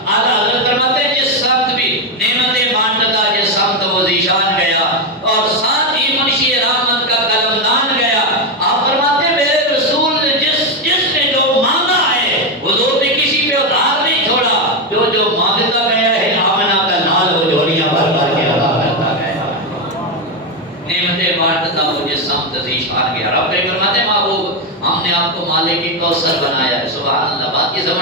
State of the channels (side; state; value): both; normal; correlation 0.08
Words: اعلیٰ حضرت فرماتے ہیں جس سمت بھی نعمتیں بانٹتا جس سمت وہ ذیشان گیا، اور ساتھ ہی منشی رحمت کا قلم دان گیا۔ آپ فرماتے ہیں میرے رسول نے جس نے جو مانگا ہے حضور نے کسی پہ ادھار نہیں چھوڑا، جو مانگتا گیا ہے آمنہ کا لال وہ جھولیاں بھر بھر کے عطا کرتا گیا۔ نعمتیں بانٹتا وہ جس سمت ذیشان گیا۔ رب فرماتے ہیں محبوب ہم نے آپ کو مالک کی کوثر بنایا ہے۔ سبحان اللہ، بات کی